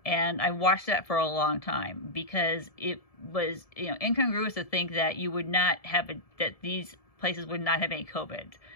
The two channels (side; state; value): right; late; 1.7 ms